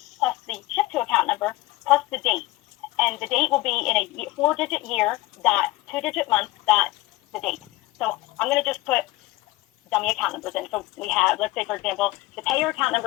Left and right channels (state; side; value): quieter; right; 19.0 dB